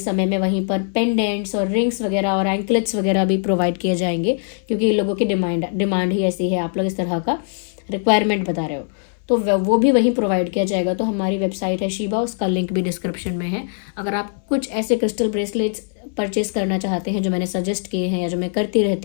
में वहीं पर पेंडेंट्स और रिंग्स वगैरह और एंकलेट्स वगैरह भी प्रोवाइड किए जाएंगे, क्योंकि लोगों की डिमांड ही ऐसी है, आप लोग इस तरह का रिक्वायरमेंट बता रहे हो, तो वो भी वहीं प्रोवाइड किया जाएगा। तो हमारी वेबसाइट है शीबा, उसका लिंक भी डिस्क्रिप्शन में है। अगर आप कुछ ऐसे क्रिस्टल ब्रेसलेट्स परचेज करना चाहते हैं जो मैंने सजेस्ट किए हैं या जो मैं करती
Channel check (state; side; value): silent; right; 63 dB below the other